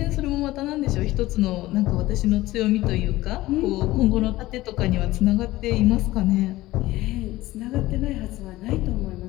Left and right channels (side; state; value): right; quieter; 17.4 dB